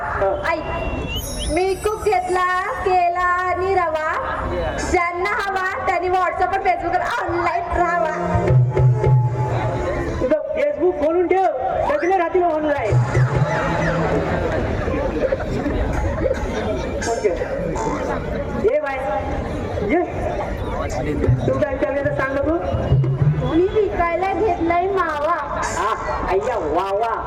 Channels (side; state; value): both; identical; correlation 1.00